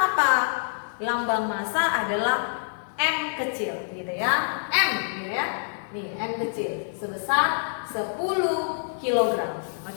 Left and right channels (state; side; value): silent; right; 61 dB below the other